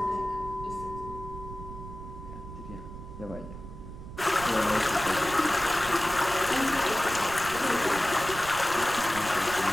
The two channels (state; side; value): noise; right; rumble, 12 dB below the sound